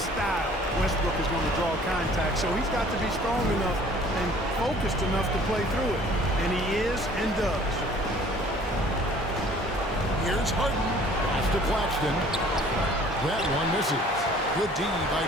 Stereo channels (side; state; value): both; normal; correlation 0.53